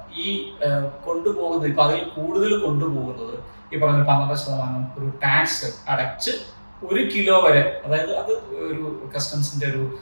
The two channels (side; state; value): both; inverted; correlation -1.00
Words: ഈ കൊണ്ടുപോകുന്നത് ഇപ്പൊ അതിൽ കൂടുതൽ കൊണ്ടുപോകുന്നത് ഈ പറഞ്ഞ 12% ഒരു ടാക്സ് അടച്ച് 1 കിലോ വരെ, അതായത് അത് ഒരു കസ്റ്റംസിന്റെ ഒരു